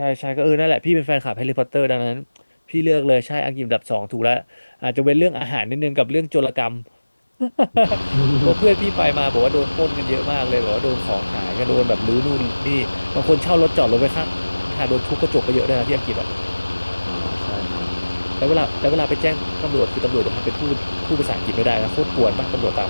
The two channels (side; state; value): both; inverted; correlation -1.00